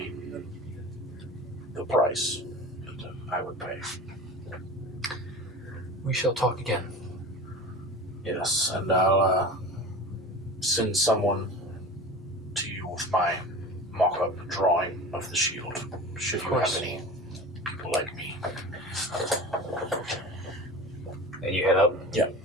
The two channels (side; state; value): both; normal; correlation 0.35